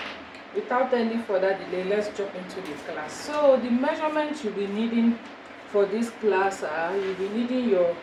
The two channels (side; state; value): both; identical; correlation 1.00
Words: Without any further delay, let's jump into the class. So the measurements you'll be needing for this class are, you'll be needing your